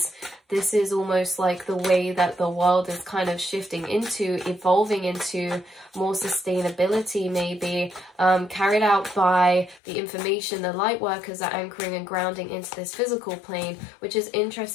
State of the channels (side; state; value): right; drops out; at 9.8 s